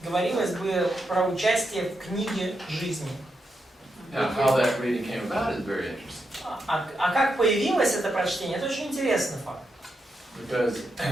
говорилось бы про участие в книге жизни. Now, how that reading came about is very interesting. А как появилось это прочтение, это очень интересный факт. Because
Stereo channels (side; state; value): both; normal; correlation 0.84